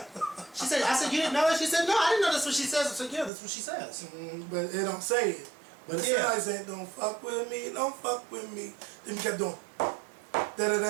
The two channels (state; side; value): drops out; left; at 3.3 s